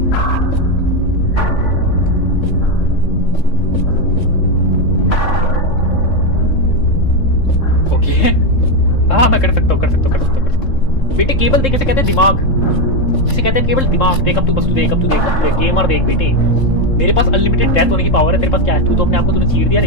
हाँ मैं कर सकता हूँ. बेटे केबल देख, इसे कहते हैं दिमाग. इसे कहते हैं केबल दिमाग. देख अब तू, बस तू देख, गेमर देख बेटे. मेरे पास अनलिमिटेड डेथ होने की पावर है, तेरे पास क्या है? तू तो अपने आप को तूने चीर दिया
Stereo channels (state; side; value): late; right; 3.7 ms